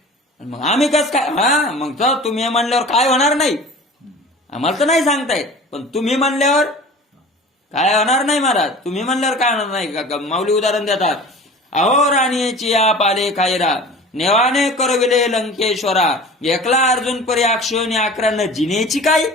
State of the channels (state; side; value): normal; both; correlation 0.40